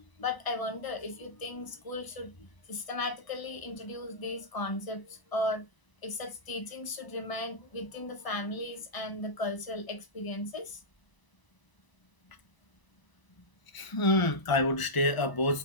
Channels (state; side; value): late; right; 1.0 ms